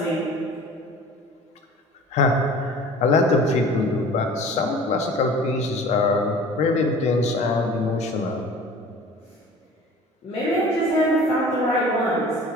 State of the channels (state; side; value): normal; both; correlation 0.44